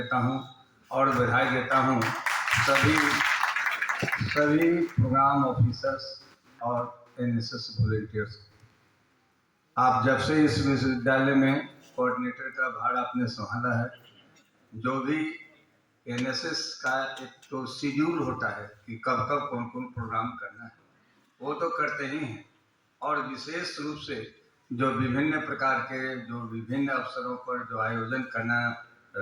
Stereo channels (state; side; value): identical; both; correlation 1.00